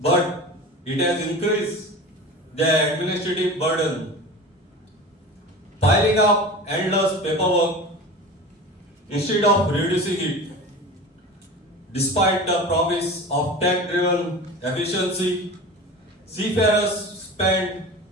it has increased their administrative burden, piling up endless paperwork instead of reducing it. Despite the promise of tech-driven efficiency, seafarers spend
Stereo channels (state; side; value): normal; both; correlation 0.34